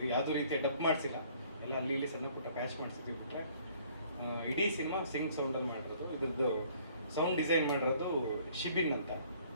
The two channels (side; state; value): both; inverted; correlation -0.58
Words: ಯಾವುದೇ ರೀತಿಯ ಡಬ್ ಮಾಡಿಸಿಲ್ಲ, ಎಲ್ಲ ಅಲ್ಲಿ ಇಲ್ಲಿ ಸಣ್ಣ ಪುಟ್ಟ ಪ್ಯಾಚ್ ಮಾಡಿಸಿದ್ವಿ ಬಿಟ್ಟರೆ ಇಡೀ ಸಿನಿಮಾ ಸಿಂಕ್ ಸೌಂಡಲ್ಲಿ ಮಾಡಿರೋದು. ಇದ್ರದ್ದು ಸೌಂಡ್ ಡಿಸೈನ್ ಮಾಡಿರೋದು ಶಿಬಿನ್ ಅಂತ,